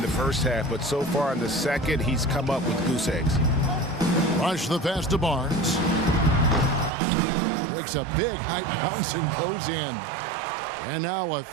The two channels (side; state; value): left; drops out; at 6.9 s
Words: the first half, but so far in the second, he's come up with goose eggs. Rush the pass to Barnes. Takes a big high bounce and goes in. And now a